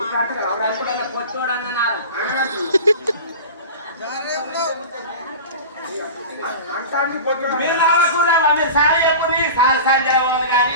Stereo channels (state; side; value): inverted; both; correlation -0.32